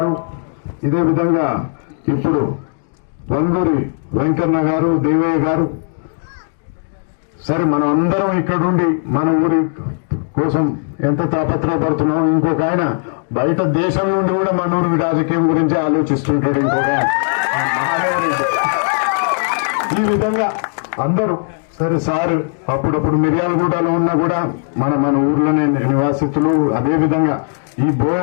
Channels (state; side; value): silent; right; digital silence